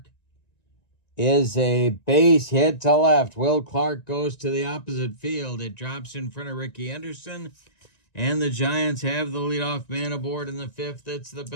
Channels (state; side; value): late; right; 1.9 ms